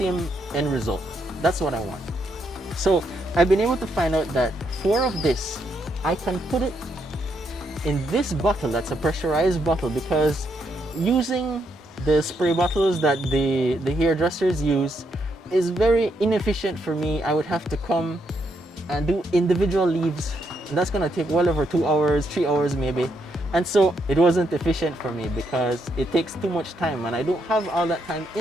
end result. That's what I want. So I've been able to find out that 4 of this, I can put it in this bottle. That's a pressurized bottle, because using the spray bottles that the hairdressers use is very inefficient for me. I would have to come and do individual leaves, and that's gonna take well over 2 hours, 3 hours maybe. And so it wasn't efficient for me because it takes too much time and I don't have all that time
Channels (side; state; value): both; normal; correlation 0.77